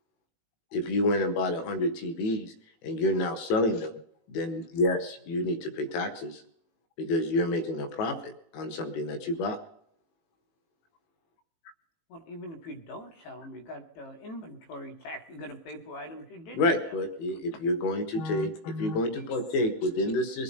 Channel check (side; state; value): right; late; 18 ms